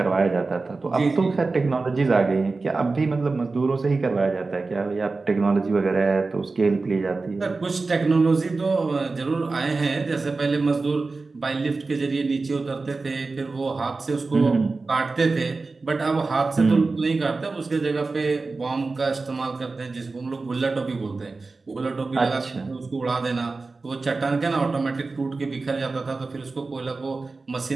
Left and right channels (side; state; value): left; quieter; 3.8 dB